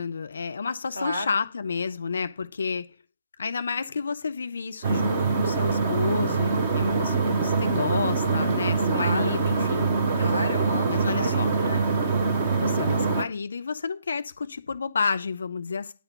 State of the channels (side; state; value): both; inverted; correlation -0.70